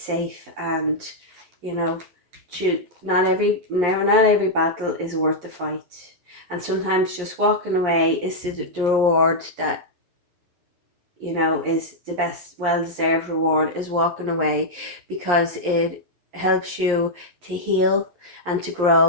and you know, not every battle is worth the fight, and sometimes just walking away is the reward that, you know, is the best, well-deserved reward, is walking away, because it helps you to heal and to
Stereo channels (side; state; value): left; late; 11 ms